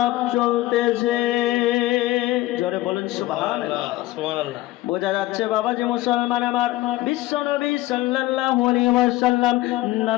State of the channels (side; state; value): right; quieter; 17.1 dB